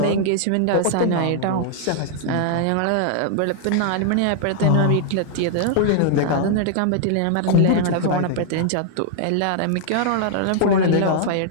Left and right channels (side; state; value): both; different; correlation -0.01